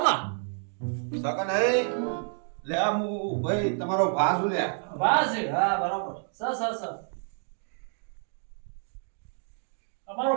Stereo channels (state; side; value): silent; left; 59 dB below the other